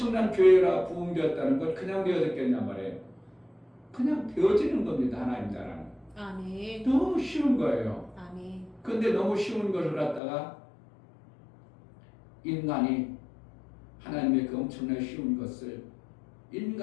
교회라 부흥되었다는 걸 그냥 되어졌겠냔 말이에요. 그냥 되어지는 겁니다. 하나님 나라는. 아멘. 너무 쉬운 거예요. 아멘. 근데 너무 쉬운 것을 갖다가 인간이 하나님의 그 엄청나게 쉬운 것을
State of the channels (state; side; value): drops out; right; at 10.2 s